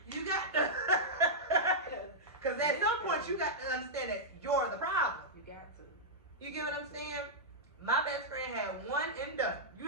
You got to, because at some point you got to understand that you're the problem. You got to. You get what I'm saying? My best friend had one and done.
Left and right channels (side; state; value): both; normal; correlation -0.10